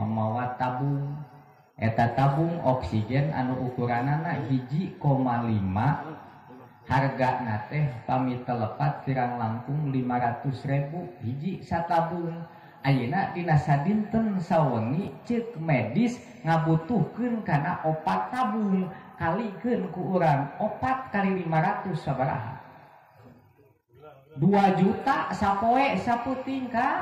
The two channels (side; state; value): both; identical; correlation 1.00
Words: tabung eta tabung oksigen anu ukuranana 1,5 hargana teh pami telepat pirang langkung 500.000 hiji satabung. Ayeuna dina sadinten sawengi ceuk medis ngabutuhkeun kana opat tabung kalikeun ku urang 4 kali 500 sabaraha 2 juta sapoe saputing